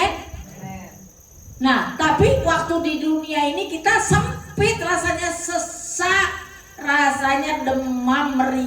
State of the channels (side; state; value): both; identical; correlation 1.00